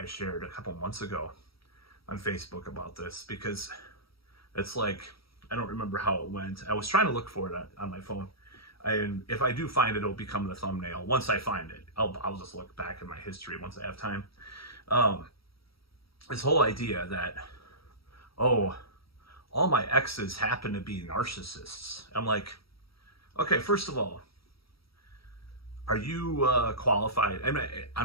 shared a couple months ago on Facebook about this, because it's like, I don't remember how it went. I was trying to look for it on my phone. And if I do find it, it'll become the thumbnail. Once I find it, I'll just look back in my history once I have time. This whole idea that, oh, all my exes happen to be narcissists. I'm like, okay, first of all, are you qualified?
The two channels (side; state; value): right; late; 0.75 ms